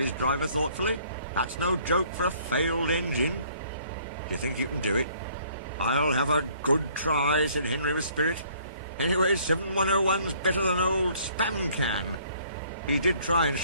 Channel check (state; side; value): inverted; both; correlation -0.60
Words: driver thoughtfully. "That's no joke for a failed engine. Do you think you can do it?" "I'll have a good try," said Henry with spirit. "Anyway, 7101's better than old spam can. He did try and